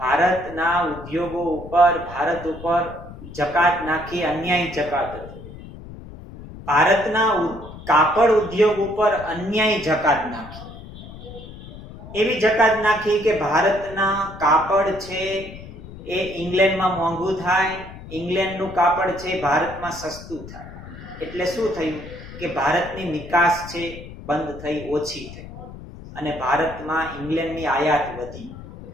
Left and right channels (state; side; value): noise; left; rumble, 14 dB below the sound